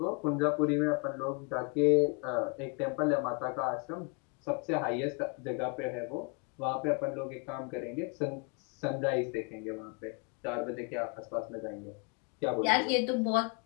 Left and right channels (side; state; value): right; quieter; 34.2 dB